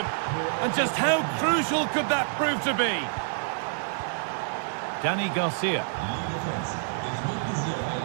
And just how crucial could that prove to be? Dani Garcia.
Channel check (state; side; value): silent; left; digital silence